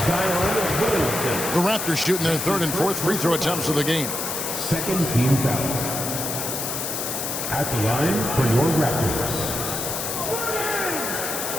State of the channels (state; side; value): noise; left; hiss, 3 dB below the sound